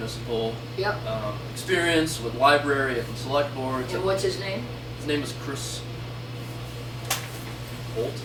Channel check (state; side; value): identical; both; correlation 1.00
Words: yep. experience with library and select boards. And what's his name? His name is Chris